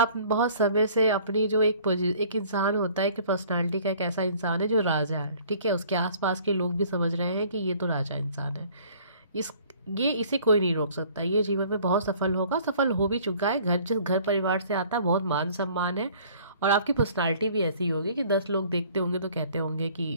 बहुत समय से अपनी जो एक इंसान होता है कि पर्सनालिटी का एक ऐसा इंसान है जो राजा है, ठीक है, उसके आसपास के लोग भी समझ रहे हैं कि ये तो राजा इंसान है, इस ये इसे कोई नहीं रोक सकता, ये जीवन में बहुत सफल होगा, सफल हो भी चुका है। जिस घर परिवार से आता है बहुत मान सम्मान है। और आपकी पर्सनालिटी भी ऐसी होगी कि 10 लोग देखते होंगे तो कहते होंगे कि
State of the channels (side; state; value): both; inverted; correlation -0.54